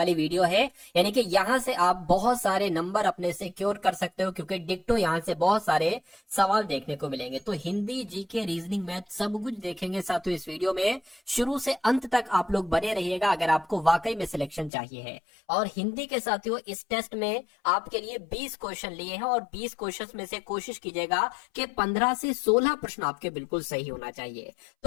वीडियो है, यानी कि यहां से आप बहुत सारे नंबर अपने सिक्योर कर सकते हो, क्योंकि डिक्टो यहां से बहुत सारे सवाल देखने को मिलेंगे। तो हिंदी, जीके, रीजनिंग, मैथ सब कुछ देखेंगे साथियों इस वीडियो में। शुरू से अंत तक आप लोग बने रहिएगा अगर आपको वाकई में सिलेक्शन चाहिए है। और हिंदी के साथियों इस टेस्ट में आपके लिए 20 क्वेश्चन लिए हैं और 20 क्वेश्चन में से कोशिश कीजिएगा कि 15 से 16 प्रश्न आपके बिल्कुल सही होना चाहिए।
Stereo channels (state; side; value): drops out; right; at 14.7 s